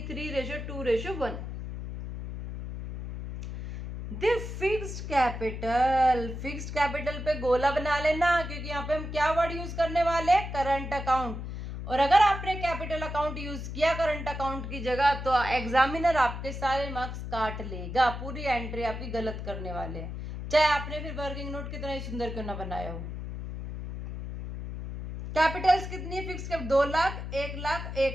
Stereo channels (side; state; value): left; noise; hum, 7 dB below the sound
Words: The fixed capital, fixed capital पे गोला बना लेना, क्योंकि यहाँ पे हम क्या वर्ड यूज करने वाले हैं? Current account. और अगर आपने कैपिटल अकाउंट यूज किया करंट अकाउंट की जगह तो एग्जामिनर आपके सारे मार्क्स काट लेगा, पूरी एंट्री आपकी गलत करने वाले हैं, चाहे आपने फिर वर्किंग नोट कितना ही सुंदर क्यों ना बनाया हो। कैपिटल्स कितनी fix? 2 lakh, 1 lakh,